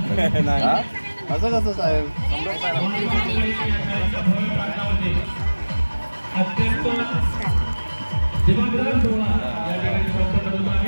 नाही असं कसं साहेब.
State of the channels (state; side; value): inverted; both; correlation -1.00